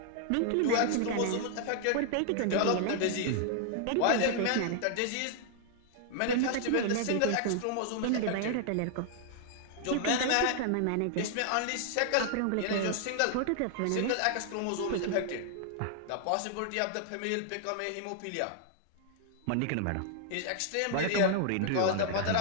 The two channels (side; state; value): both; different; correlation 0.00